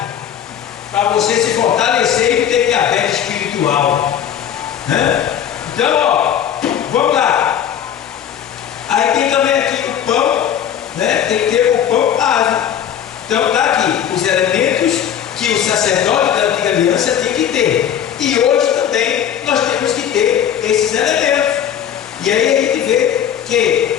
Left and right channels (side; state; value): right; quieter; 9.6 dB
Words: Para você se fortalecer e ter diabetes espiritual. Então, ó, vamos lá. Aí tem também aqui o pão, né? Tem que ter o pão asmo. Então tá aqui. E aí a gente vê